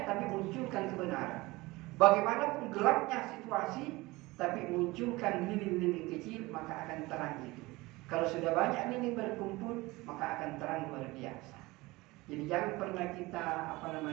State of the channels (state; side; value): quieter; left; 21.5 dB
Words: tapi munculkan kebenaran. Bagaimanapun gelapnya situasi, tapi munculkan lilin-lilin kecil, maka akan terang itu. Kalau sudah banyak lilin berkumpul, maka akan terang luar biasa. Jadi jangan pernah kita